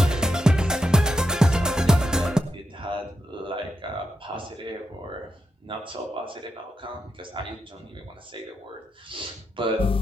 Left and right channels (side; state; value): both; normal; correlation 0.85